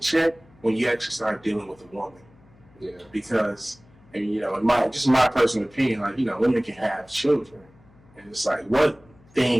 when you actually start dealing with a woman. Yeah. Because, and you know, in my personal opinion, like, you know, women can have children, and it's like, what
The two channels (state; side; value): noise; left; hum, 28 dB below the sound